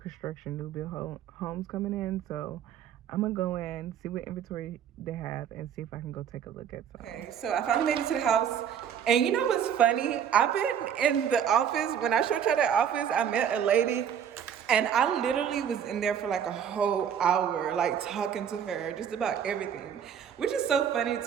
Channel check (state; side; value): quieter; left; 8.5 dB